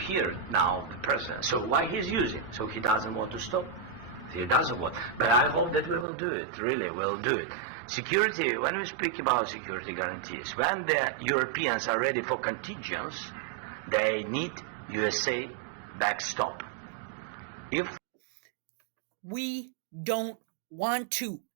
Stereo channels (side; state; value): left; drops out; at 6.1 s